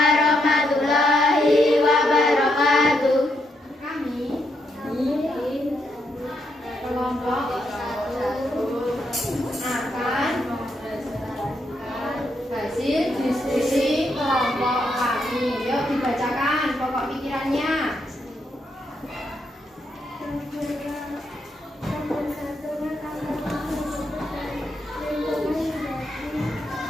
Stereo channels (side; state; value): both; normal; correlation 0.79